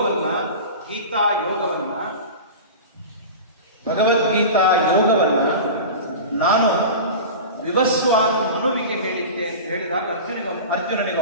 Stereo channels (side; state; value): both; inverted; correlation -0.31